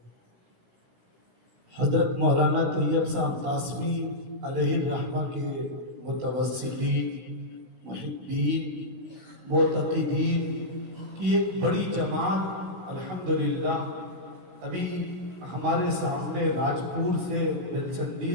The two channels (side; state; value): left; late; 16 ms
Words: حضرت مولانا طیب صاحب قاسمی علیہ الرحمہ کے متوسلین، محبین، معتقدین کی ایک بڑی جماعت الحمدللہ ابھی ہمارے سامنے راجپور سے،